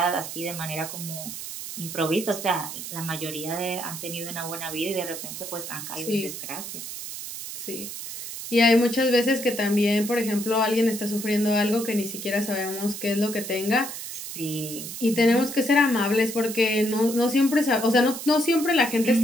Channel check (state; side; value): noise; right; hiss, 8 dB below the sound